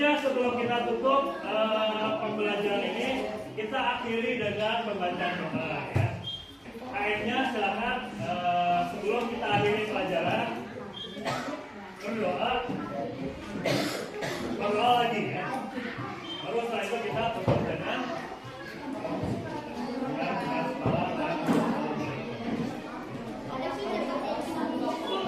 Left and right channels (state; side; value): identical; both; correlation 1.00